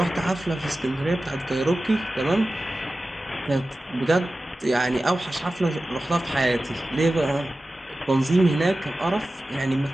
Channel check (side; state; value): both; normal; correlation 0.95